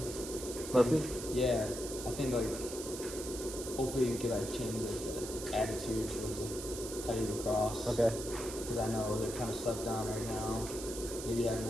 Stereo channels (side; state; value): right; noise; hiss, 9 dB below the sound